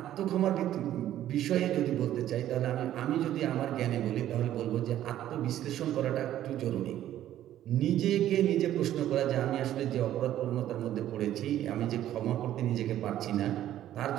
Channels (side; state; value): left; quieter; 12.3 dB